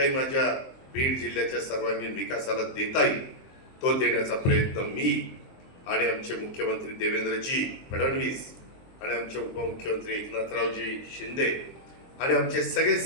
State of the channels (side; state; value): right; late; 23 ms